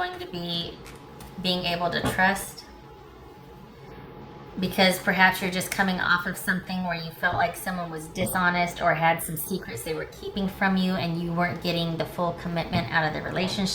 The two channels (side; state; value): both; identical; correlation 1.00